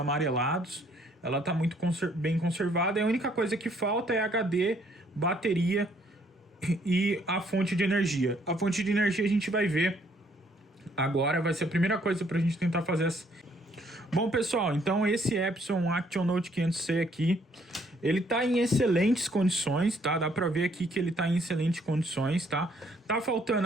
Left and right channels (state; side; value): normal; both; correlation 0.66